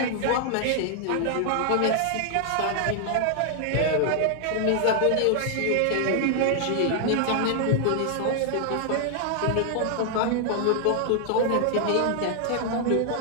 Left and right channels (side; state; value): both; different; correlation 0.00